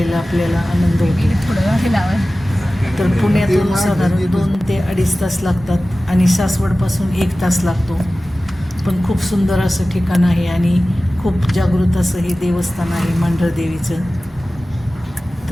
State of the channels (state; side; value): normal; both; correlation 0.96